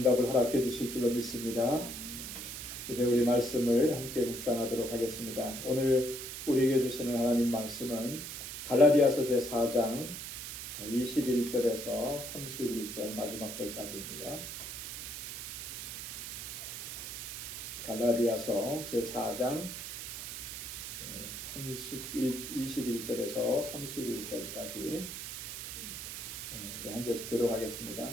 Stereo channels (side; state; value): right; noise; hiss, 8 dB below the sound